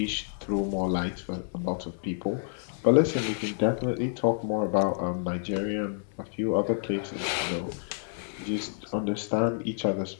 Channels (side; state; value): right; silent; digital silence